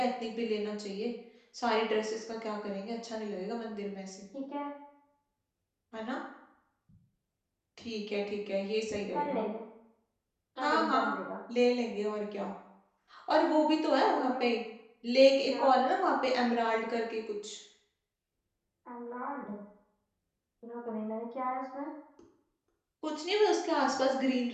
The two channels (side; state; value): both; identical; correlation 1.00